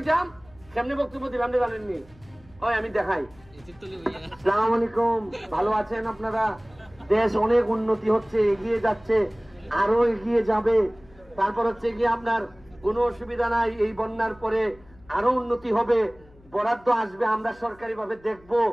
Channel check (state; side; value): noise; left; hum, 27 dB below the sound